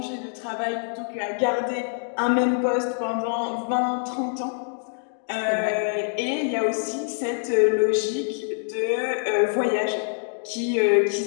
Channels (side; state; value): right; silent; digital silence